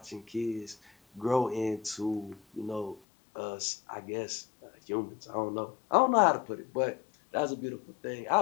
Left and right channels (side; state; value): right; drops out; at 3.0 s